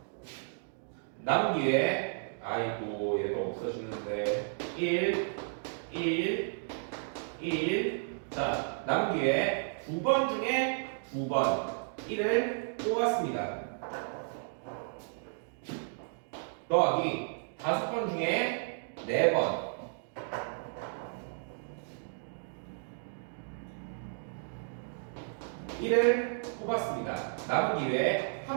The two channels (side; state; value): left; silent; digital silence